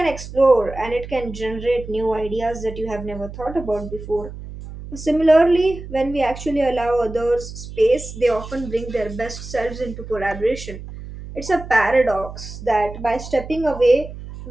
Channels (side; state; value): right; noise; hum, 12 dB below the sound